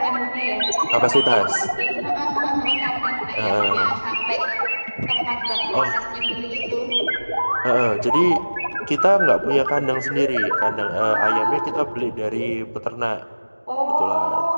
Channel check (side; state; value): both; inverted; correlation -1.00